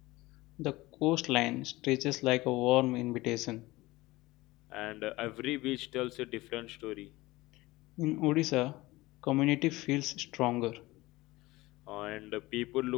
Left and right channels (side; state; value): right; quieter; 19.9 dB